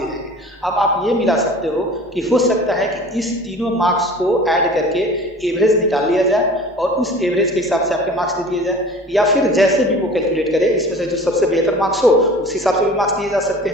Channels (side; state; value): both; normal; correlation 0.42